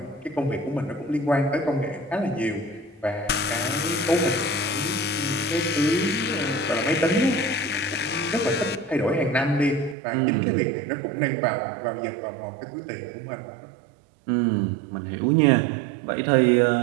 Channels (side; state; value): left; drops out; at 10.0 s